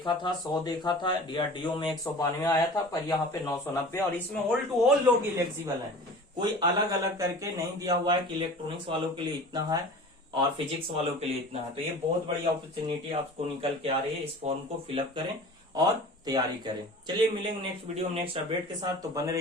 था, 100 देखा था, DRDO में 192 आया था, पर यहाँ पे 990, और इसमें ऑल टू ऑल लोग इलेक्जिबल है, कोई अलग अलग करके नहीं दिया हुआ है कि इलेक्ट्रॉनिक्स वालों के लिए इतना है और फिजिक्स वालों के लिए इतना है। तो ये बहुत बड़ी अपॉर्चुनिटी आपको निकल के आ रही है, इस फॉर्म को फिलअप करें और तैयारी करें। चलिए मिलेंगे नेक्स्ट वीडियो में नेक्स्ट अपडेट के साथ, तो बने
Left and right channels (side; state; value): both; normal; correlation 0.40